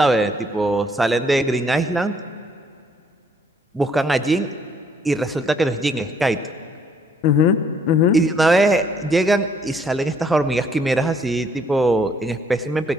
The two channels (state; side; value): normal; both; correlation 0.65